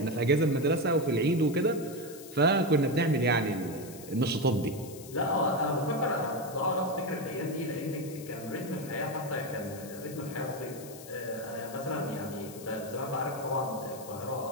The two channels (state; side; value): noise; left; hiss, 16 dB below the sound